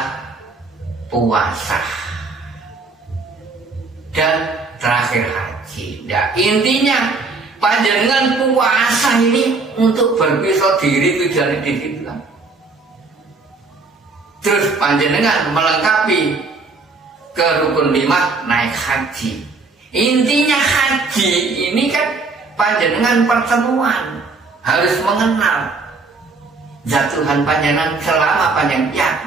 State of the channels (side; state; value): left; quieter; 4.0 dB